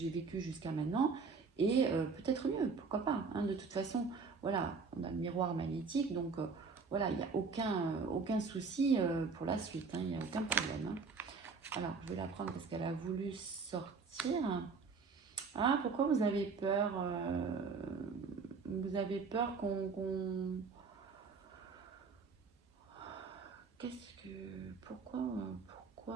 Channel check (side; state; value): left; quieter; 4.8 dB